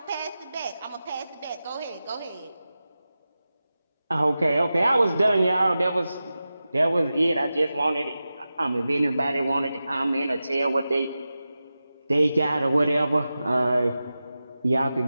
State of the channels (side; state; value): both; inverted; correlation -0.93